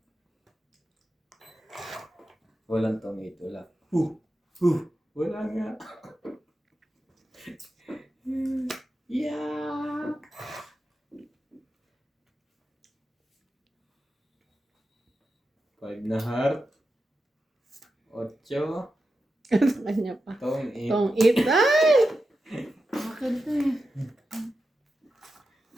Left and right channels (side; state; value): both; normal; correlation 0.90